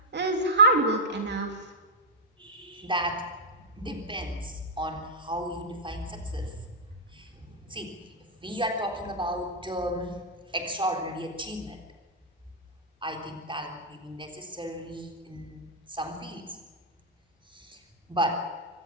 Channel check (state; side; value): normal; both; correlation -0.06